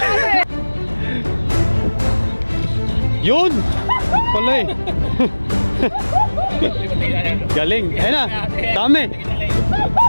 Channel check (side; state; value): both; inverted; correlation -1.00